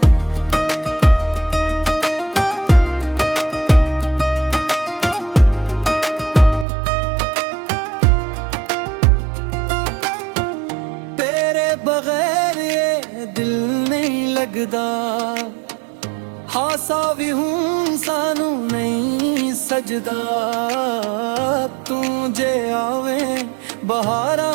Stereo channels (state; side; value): drops out; left; at 6.7 s